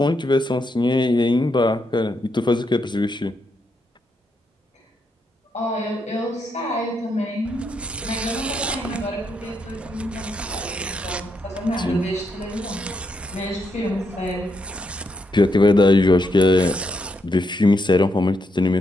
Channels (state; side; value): normal; both; correlation 0.80